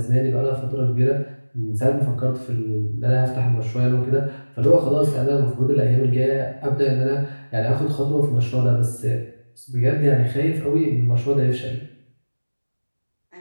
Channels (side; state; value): both; inverted; correlation -1.00